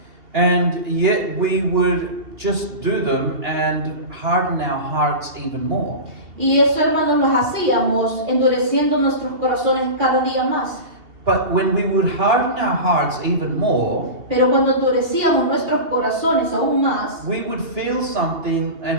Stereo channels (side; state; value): left; late; 2.7 ms